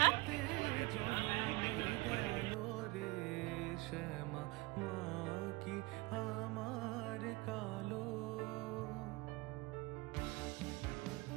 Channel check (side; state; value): left; quieter; 22.8 dB